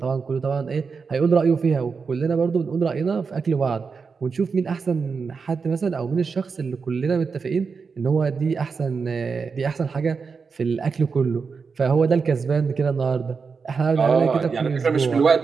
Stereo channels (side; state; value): left; quieter; 5.2 dB